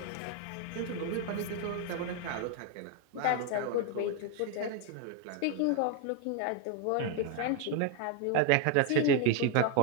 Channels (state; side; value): different; both; correlation 0.00